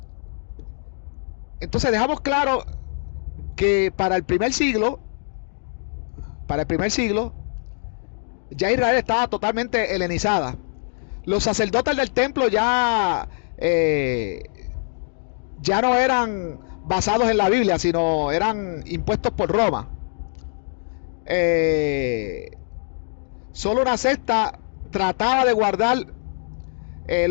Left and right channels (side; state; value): right; silent; digital silence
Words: entonces dejamos claro que para el primer siglo, ya Israel estaba totalmente helenizada. Los sacerdotes del templo ya no eran basados en la Biblia, sino eran impuestos por Roma. Solo una secta trataba de guardar